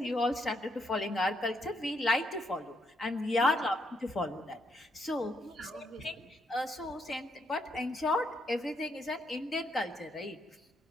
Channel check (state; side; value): normal; both; correlation 0.76